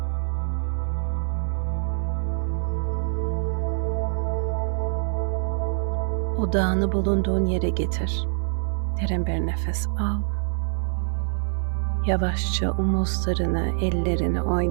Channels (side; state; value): left; silent; 57 dB below the other